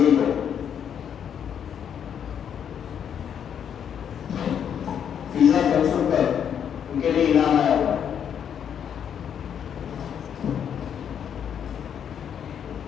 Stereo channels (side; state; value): right; quieter; 8.4 dB